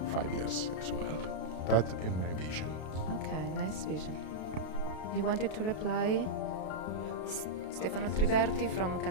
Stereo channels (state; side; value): late; right; 32 ms